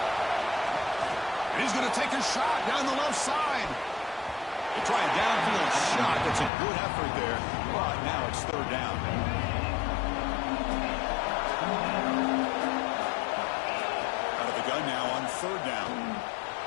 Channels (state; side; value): drops out; right; at 6.5 s